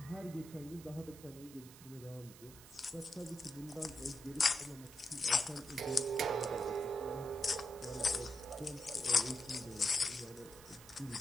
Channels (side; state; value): right; noise; hiss, 18 dB below the sound